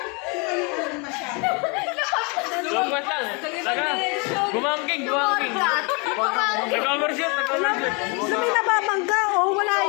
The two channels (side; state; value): right; quieter; 31.7 dB